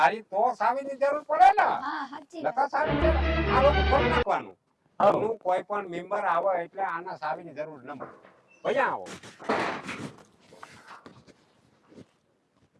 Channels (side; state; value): both; identical; correlation 1.00